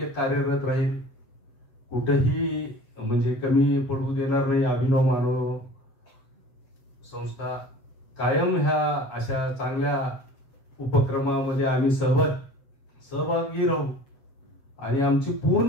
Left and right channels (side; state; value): right; late; 7.4 ms